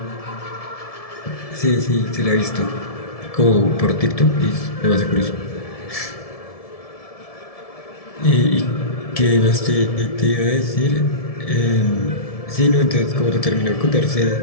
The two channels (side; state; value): right; late; 1.7 ms